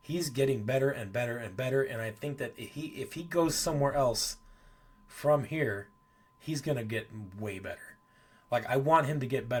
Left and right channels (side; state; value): both; identical; correlation 1.00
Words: getting better and better and better, and I think that if he goes somewhere else from here, he's going to get way better. I want him to get